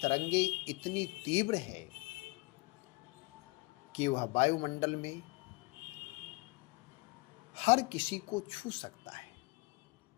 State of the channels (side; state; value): right; quieter; 25.0 dB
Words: इतनी तीव्र है कि वह वायुमंडल में हर किसी को छू सकता है,